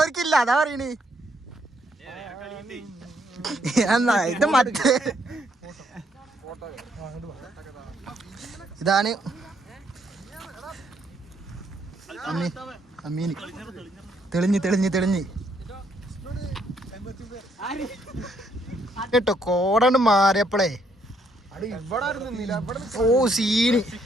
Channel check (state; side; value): normal; both; correlation 0.71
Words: അതാ പറയണേ. എന്നാ ഇത് മറ്റേ ഇതാണ് അമ്മീന് തെളിഞ്ഞ് കേട്ടോ കോടണ്ട് മാറിയപ്പോളേ ഓ സീന്.